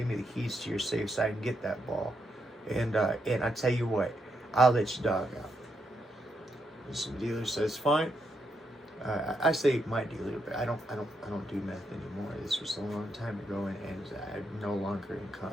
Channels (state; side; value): normal; both; correlation 0.81